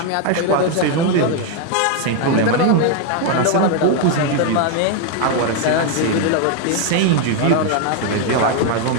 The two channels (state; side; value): different; both; correlation 0.01